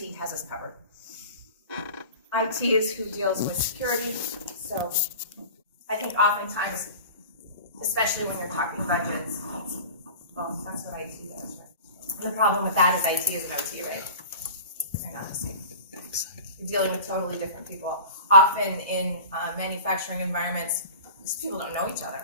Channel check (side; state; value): both; inverted; correlation -0.39